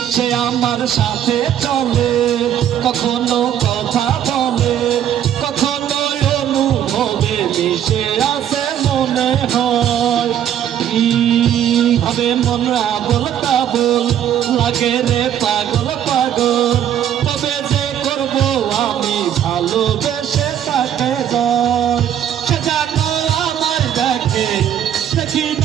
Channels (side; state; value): left; quieter; 10.2 dB